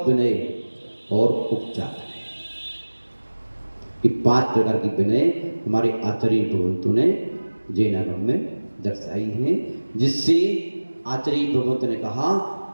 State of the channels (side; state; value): both; inverted; correlation -1.00